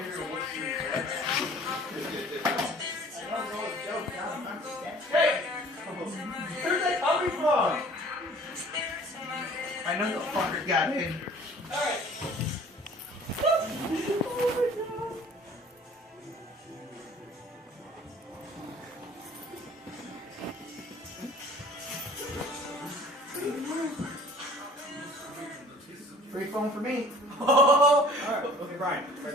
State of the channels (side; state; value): both; normal; correlation 0.50